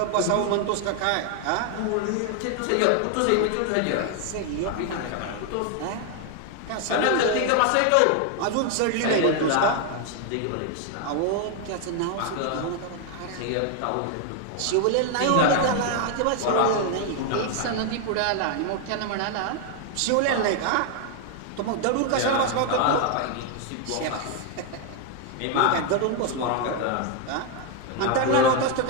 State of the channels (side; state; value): both; different; correlation 0.00